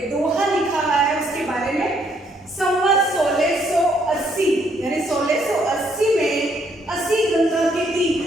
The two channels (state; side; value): normal; both; correlation 0.70